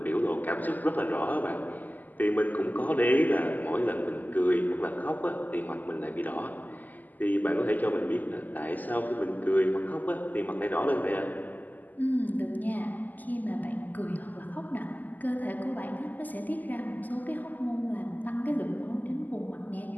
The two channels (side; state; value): right; late; 0.083 ms